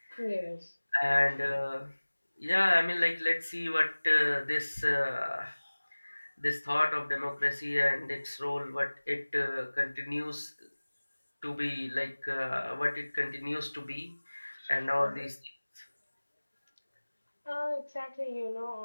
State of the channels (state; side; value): inverted; both; correlation -1.00